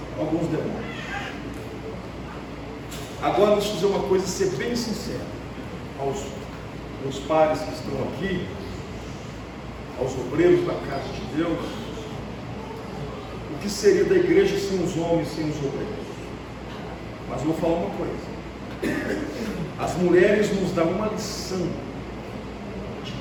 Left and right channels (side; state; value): both; identical; correlation 1.00